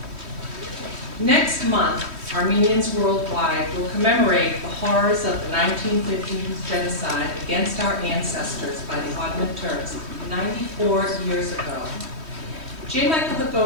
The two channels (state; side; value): late; left; 3.1 ms